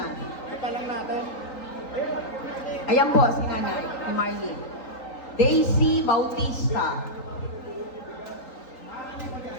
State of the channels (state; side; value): late; right; 3.9 ms